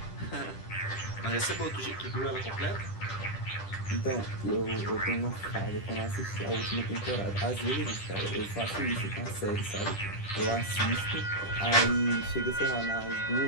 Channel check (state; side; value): late; right; 10 ms